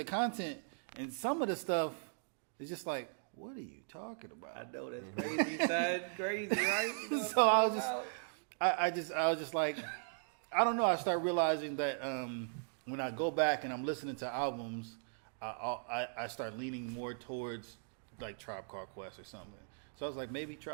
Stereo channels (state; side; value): silent; left; digital silence